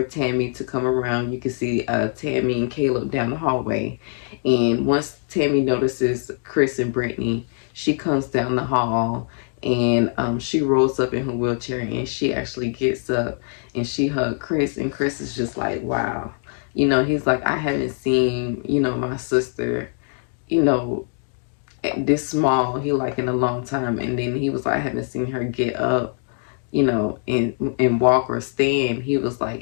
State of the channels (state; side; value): silent; right; 63 dB below the other